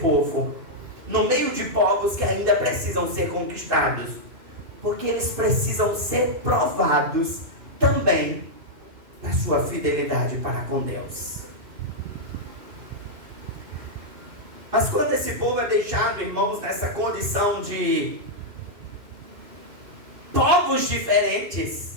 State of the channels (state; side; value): late; left; 2.9 ms